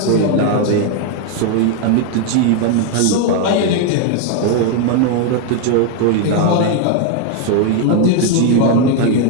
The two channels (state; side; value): different; both; correlation 0.00